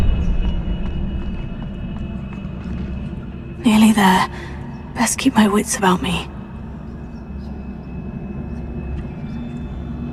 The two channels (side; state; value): both; identical; correlation 1.00